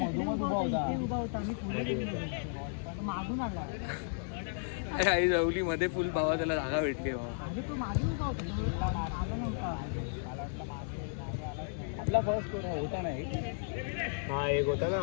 उभा होता. मागून आला. अरे आई जवली मध्ये फुल भावा त्याला जागा भेटली भावा. आपला फर्स्ट होता नाही. हा एक होता ना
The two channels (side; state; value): right; silent; digital silence